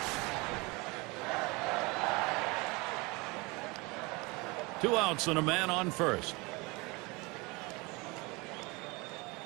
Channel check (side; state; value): left; quieter; 25.9 dB